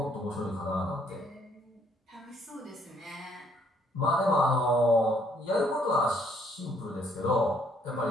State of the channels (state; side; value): normal; both; correlation 0.67